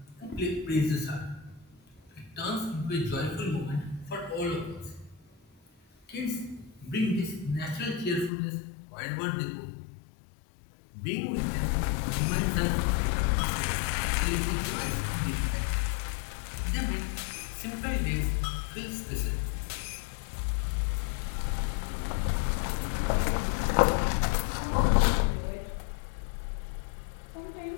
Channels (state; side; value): drops out; right; at 8.3 s